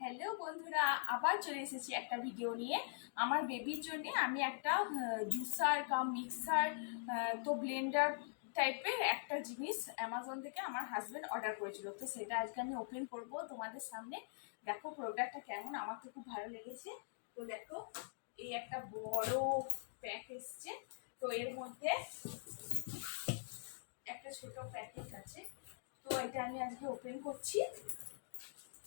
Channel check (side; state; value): right; silent; digital silence